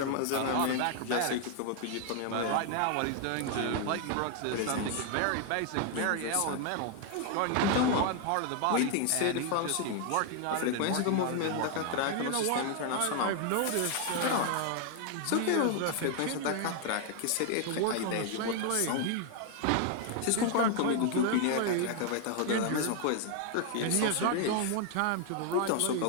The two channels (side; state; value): both; different; correlation 0.00